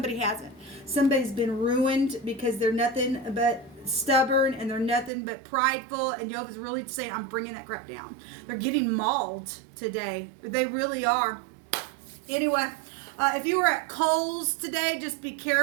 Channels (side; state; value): left; drops out; at 5.1 s